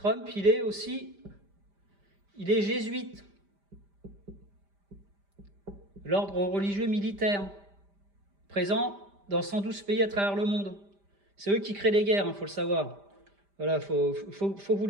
il est jésuite. L'ordre religieux militaire, présent dans 112 pays à travers le monde. C'est eux qui créent les guerres, faut le savoir. Voilà, faut que vous le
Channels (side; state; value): left; late; 5.0 ms